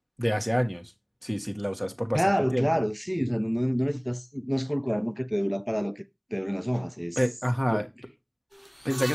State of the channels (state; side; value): identical; both; correlation 1.00